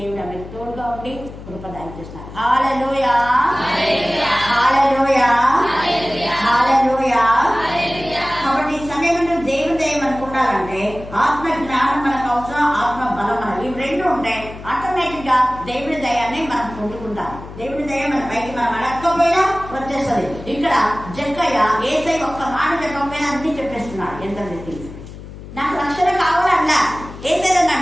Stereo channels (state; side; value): noise; left; hum, 14 dB below the sound